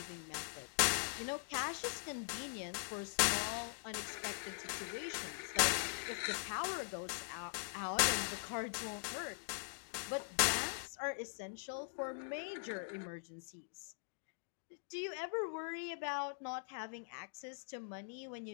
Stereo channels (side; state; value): right; silent; digital silence